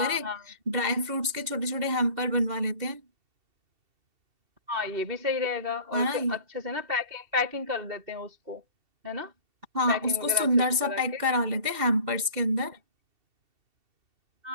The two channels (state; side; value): late; left; 2.7 ms